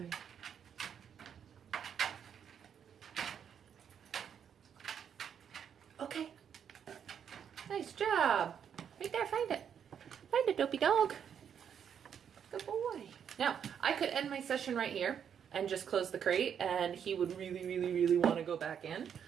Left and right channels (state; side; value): quieter; left; 8.1 dB